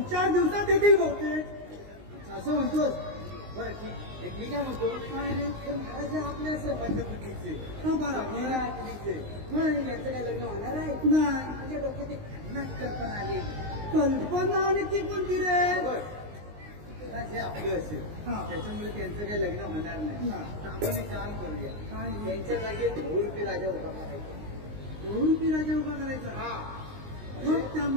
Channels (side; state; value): left; late; 19 ms